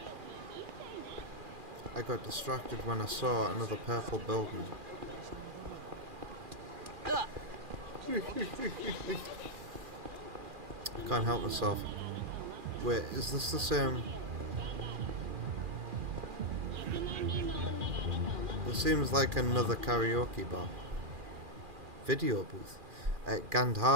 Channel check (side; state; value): left; late; 2.4 ms